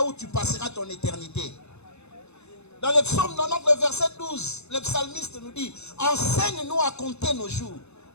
où tu passeras ton éternité. Dans le psaume 90, le verset 12, le psalmiste nous dit, enseigne-nous à compter nos jours,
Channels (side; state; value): right; late; 0.81 ms